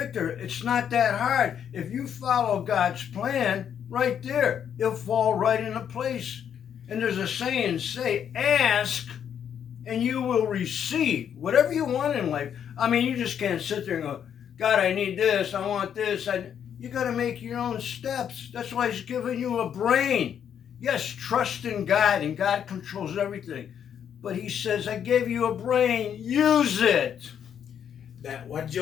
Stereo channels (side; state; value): right; quieter; 8.7 dB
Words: it's not that hard. If you follow God's plan, right there, it'll fall right into place. And there's a saying, ask and you will receive whatever you want in life. I mean, you just can't sit there and go, God, I need this, I want this. You got to make your own steps. That's why He's giving you a brain. Yes, trust in God, and God controls everything. But He says, I gave you a brain, use it. That what